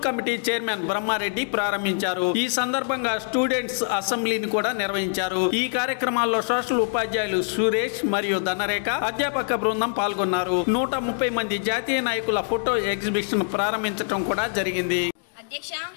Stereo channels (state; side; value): silent; right; 59 dB below the other